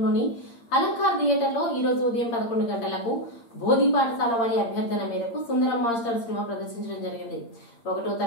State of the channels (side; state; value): right; late; 8.7 ms